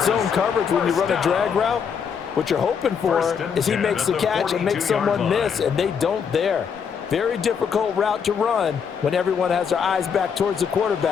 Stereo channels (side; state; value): right; quieter; 6.8 dB